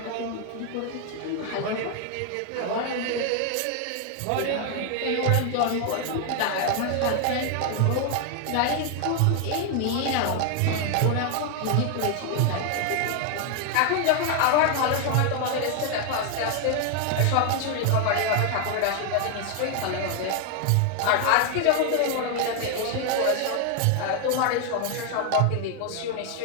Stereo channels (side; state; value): both; different; correlation 0.00